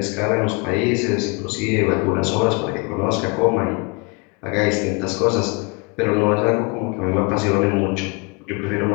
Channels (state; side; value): quieter; right; 29.9 dB